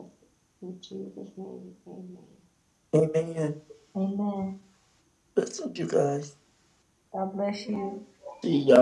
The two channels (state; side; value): identical; both; correlation 1.00